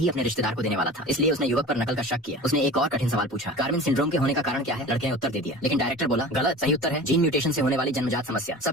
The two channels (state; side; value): normal; both; correlation 0.37